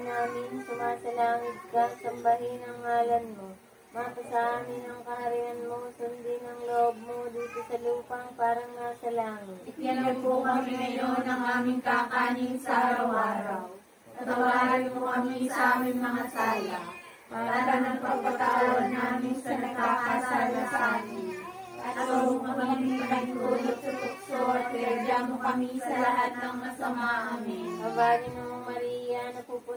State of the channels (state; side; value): identical; both; correlation 1.00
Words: sumasalangit ka, sambahin ang ngalan mo. Mapasa amin ang kaharian mo, sundin ang loob mo dito sa lupang parang nasa langit. Bigyan po kami ngayon ng aming kakanin sa araw-araw. Patawarin mo kami sa aming mga sala, para nagpapatawad namin sa nagkakasala sa amin. At huwag mo kami pinagtulot sa tukso at iadya mo kami sa lahat ng masama. Amen. Abagin ng Maria,